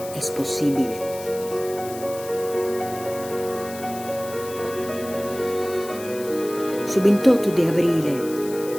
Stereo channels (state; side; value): noise; left; hiss, 15 dB below the sound